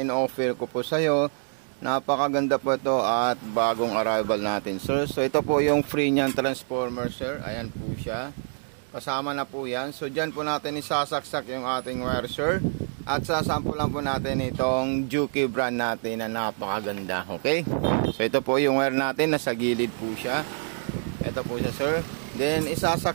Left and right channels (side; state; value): left; silent; 61 dB below the other